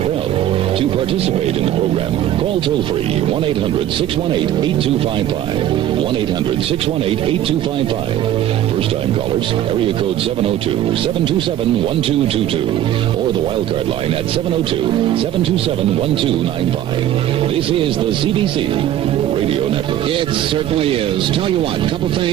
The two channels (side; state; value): left; quieter; 12.0 dB